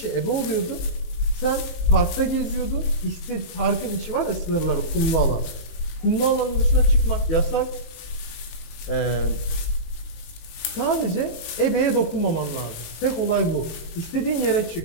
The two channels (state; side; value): late; right; 19 ms